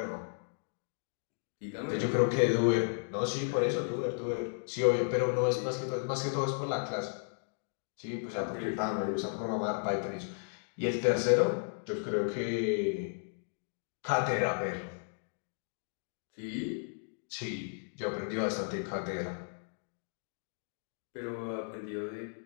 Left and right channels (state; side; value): silent; right; digital silence